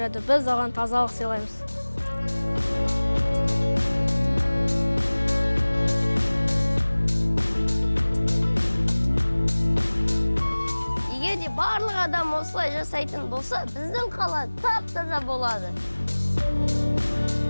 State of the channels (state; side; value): inverted; both; correlation -1.00